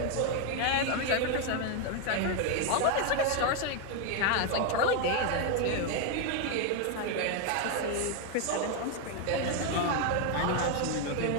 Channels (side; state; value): both; different; correlation 0.01